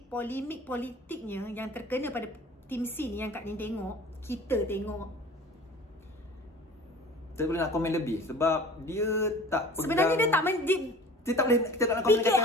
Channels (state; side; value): normal; both; correlation 0.43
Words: polemik politiknya yang terkena pada tim C ni yang Kak Nin tengok, kita tengok. Saya boleh nak komen lebih sebab dia tak pegang. Sebenarnya dia tak kita tak boleh, kita tak nak komen kata